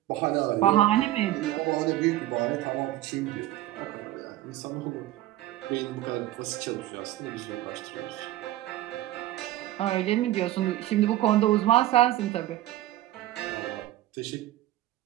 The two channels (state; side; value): quieter; left; 14.7 dB